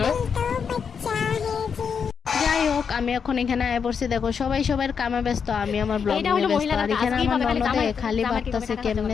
যাই হোক, আমি এখন এখানে আয় পড়ছি। দেখো সবাই সবার কামে ব্যস্ত, আমি আমার ব্লগ নিয়ে ব্যস্ত। আর এখানে আমার ননদে খালি ভাবতেছে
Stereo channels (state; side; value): quieter; right; 6.5 dB